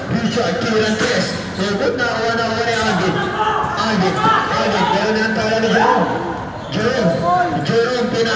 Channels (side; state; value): both; identical; correlation 1.00